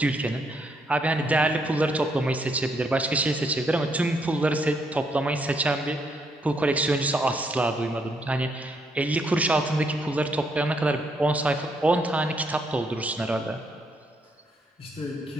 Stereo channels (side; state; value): both; normal; correlation 0.74